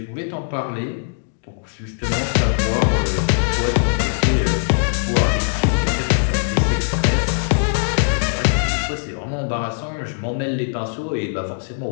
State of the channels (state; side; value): silent; right; digital silence